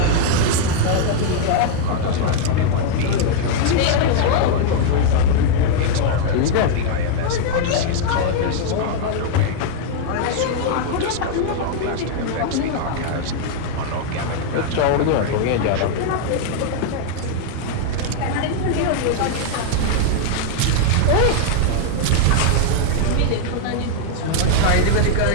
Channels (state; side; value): different; both; correlation 0.00